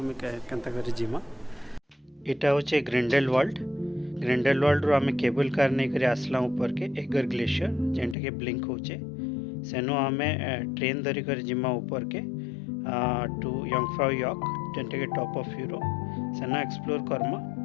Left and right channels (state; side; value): drops out; right; at 8.2 s